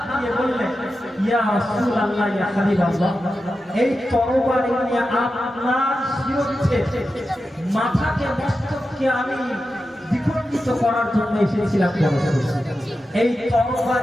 দিয়ে বললেন, ইয়া রাসূলুল্লাহ, ইয়া হাবিবাল্লাহ, এই তরবারি নিয়ে আপনার শিরোচ্ছে মাথাকে মস্তককে আমি বিখণ্ডিত করার জন্য এসেছিলাম। এই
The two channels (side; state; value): both; normal; correlation 0.91